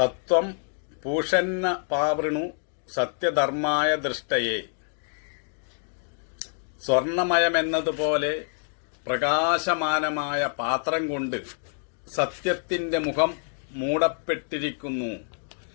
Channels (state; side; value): silent; right; digital silence